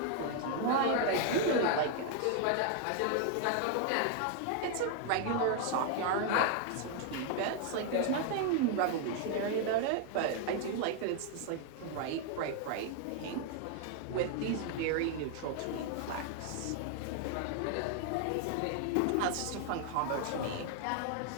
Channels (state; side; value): different; both; correlation 0.00